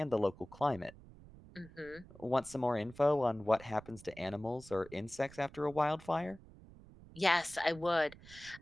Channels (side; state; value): right; noise; rumble, 20 dB below the sound